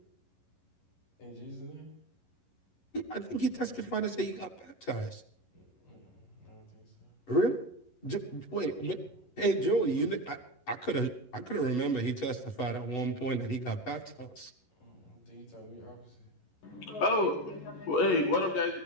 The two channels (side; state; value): right; late; 11 ms